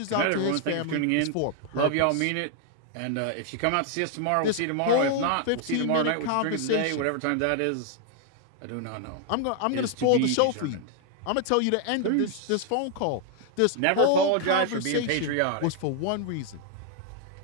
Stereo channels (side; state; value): both; different; correlation 0.00